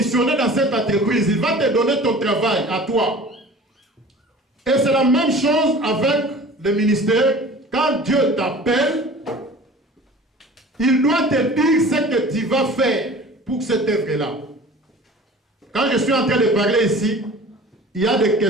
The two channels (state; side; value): normal; both; correlation 0.43